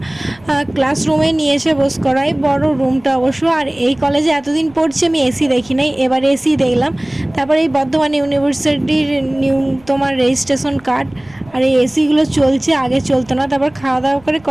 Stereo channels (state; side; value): noise; right; rumble, 27 dB below the sound